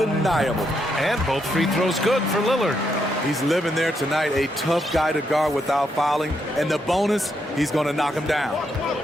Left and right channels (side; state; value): both; normal; correlation 0.79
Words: And both free throws good for Lillard. He's living there tonight, a tough guy to guard without fouling. And the bonus, he's going to knock him down.